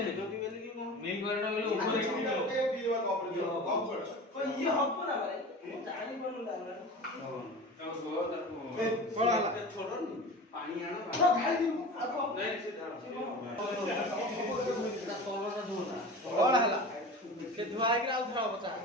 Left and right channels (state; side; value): normal; both; correlation 0.34